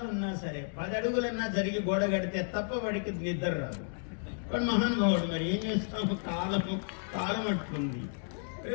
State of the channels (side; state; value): right; silent; digital silence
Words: ఉన్నా సరే 10 అడుగులన్నా జరిగి గోడ కడితే తప్ప వాడికి నిద్ర రాదు. వాడు మహానుభావుడు. మరి ఏం చేస్తాము? కాలం అట్లుంది.